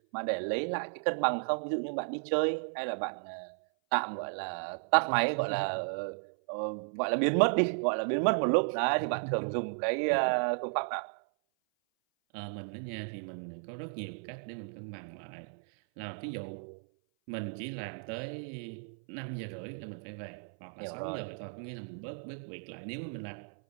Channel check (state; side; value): silent; left; 55 dB below the other